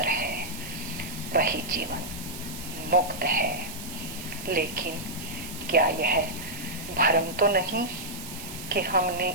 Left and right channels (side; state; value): right; noise; hiss, 11 dB below the sound